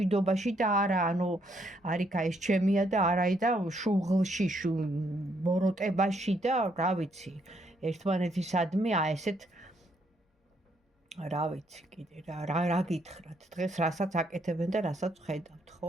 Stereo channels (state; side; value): normal; both; correlation 0.72